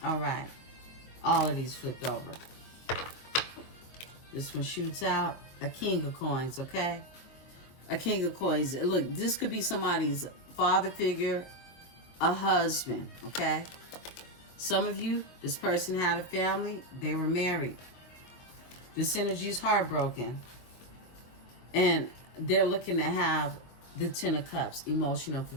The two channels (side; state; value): right; late; 23 ms